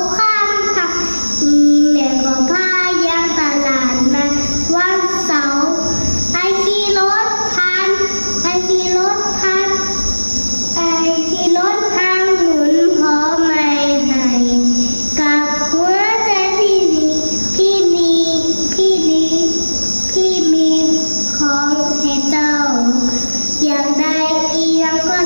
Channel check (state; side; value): inverted; both; correlation -1.00